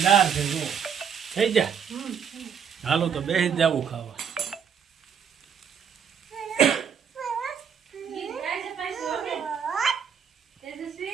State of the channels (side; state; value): left; quieter; 7.4 dB